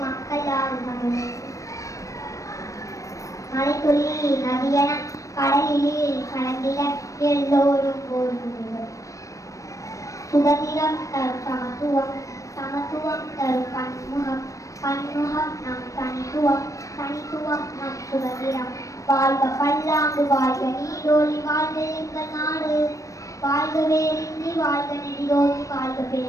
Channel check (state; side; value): late; right; 0.16 ms